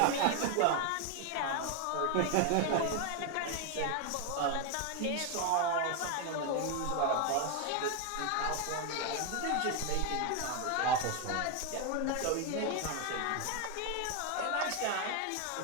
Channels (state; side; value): different; both; correlation 0.01